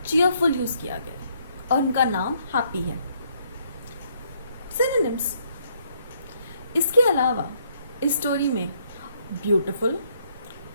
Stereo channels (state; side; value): inverted; both; correlation -0.69